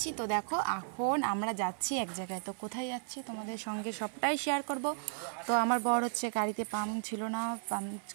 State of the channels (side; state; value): left; silent; digital silence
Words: তো দেখো, এখন আমরা যাচ্ছি এক জায়গায়। তো কোথায় যাচ্ছি তোমাদের সঙ্গে সবটাই শেয়ার করব। তো আমার বর হচ্ছে গাড়িতে পাম্প ছিল না, পাম্প